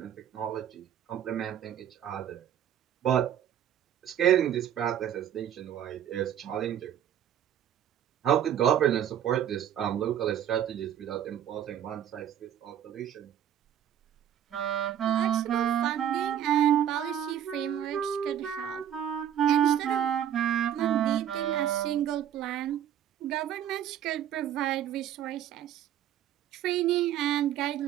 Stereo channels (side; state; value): left; quieter; 10.2 dB